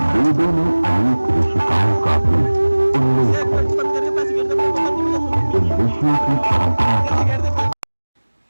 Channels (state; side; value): inverted; both; correlation -1.00